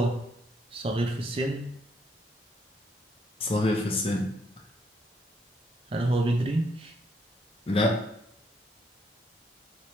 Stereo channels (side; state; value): both; normal; correlation 0.73